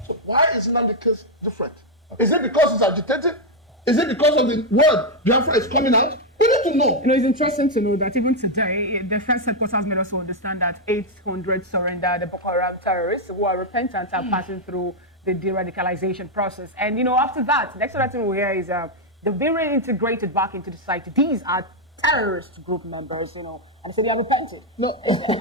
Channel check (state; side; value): normal; both; correlation 0.00